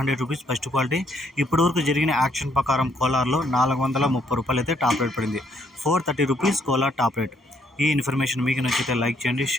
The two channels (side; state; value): both; normal; correlation 0.69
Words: rupees first quality. ఇప్పటివరకు జరిగిన యాక్షన్ ప్రకారం కోలార్లో 430 రూపాయలు అయితే టాప్ రేట్ పడింది. 430 రూపీస్ కోలార్ టాప్ రేట్. ఈ ఇన్ఫర్మేషన్ మీకు నచ్చితే లైక్ చేయండి,